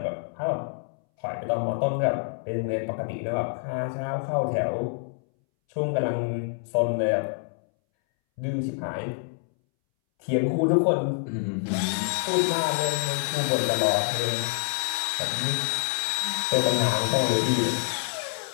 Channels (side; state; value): right; silent; 60 dB below the other